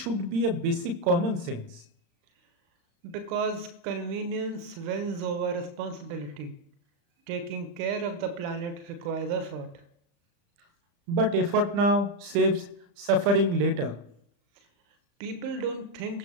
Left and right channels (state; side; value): late; left; 35 ms